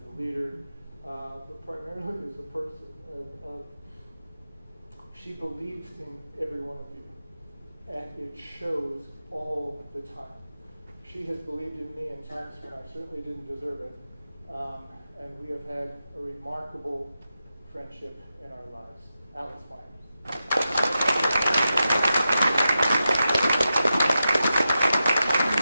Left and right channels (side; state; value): both; inverted; correlation -0.89